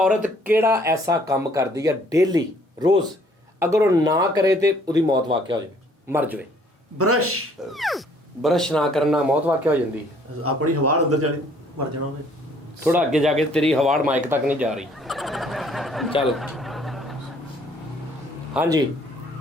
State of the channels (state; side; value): normal; both; correlation 0.61